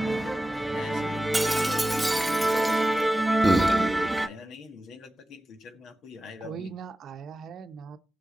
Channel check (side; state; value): both; normal; correlation 0.95